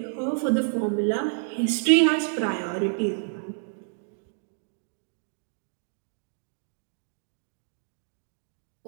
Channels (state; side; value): silent; left; digital silence